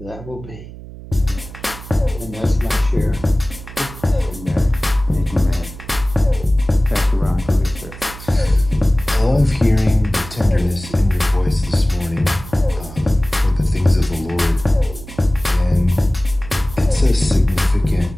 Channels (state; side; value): noise; right; hum, 15 dB below the sound